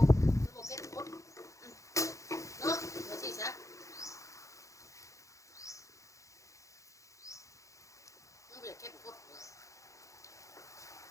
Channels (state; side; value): late; right; 0.15 ms